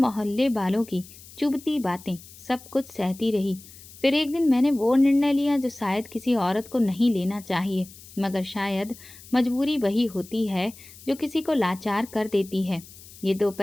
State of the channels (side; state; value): left; noise; hiss, 19 dB below the sound